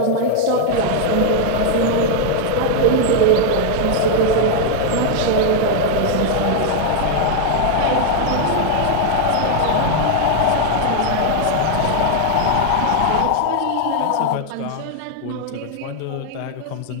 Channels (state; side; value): different; both; correlation 0.00